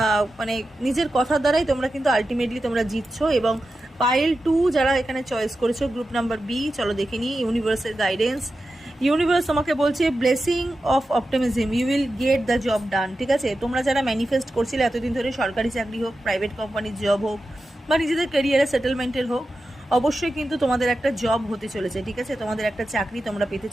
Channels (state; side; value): normal; both; correlation 0.91